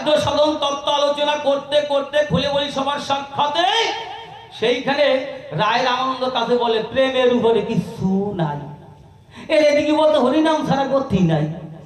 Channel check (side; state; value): both; identical; correlation 1.00